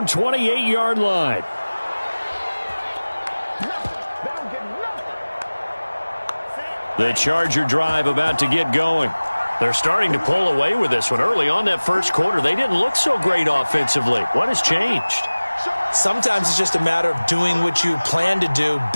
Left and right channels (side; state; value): both; inverted; correlation -1.00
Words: 28-yard line. The Charger drive about to get going. They're starting to pull away with this one. Early on that first quarter, they didn't look so great offensively. What has changed? Sometimes it's just a matter of doing what you plan to do